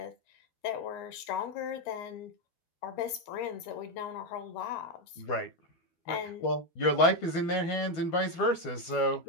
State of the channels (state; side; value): late; right; 12 ms